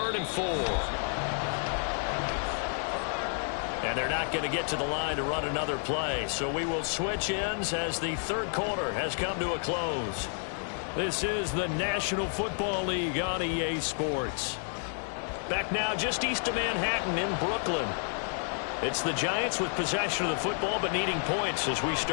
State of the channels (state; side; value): silent; right; 58 dB below the other